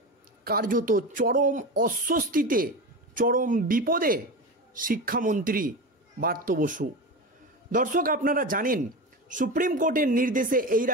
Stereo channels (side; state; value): both; normal; correlation 0.24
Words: কার্যত চরম অস্বস্তিতে, চরম বিপদে শিক্ষামন্ত্রী ব্রাত্য বসু। দর্শক, আপনারা জানেন সুপ্রিম কোর্টের নির্দেশে এই